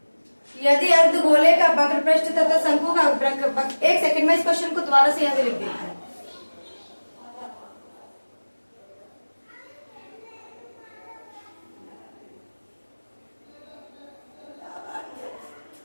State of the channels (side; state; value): both; inverted; correlation -1.00